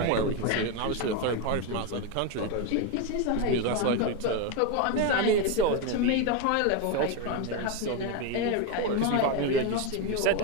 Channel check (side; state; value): both; different; correlation 0.02